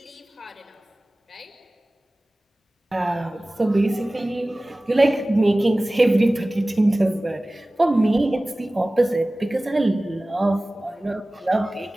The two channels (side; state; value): both; normal; correlation 0.98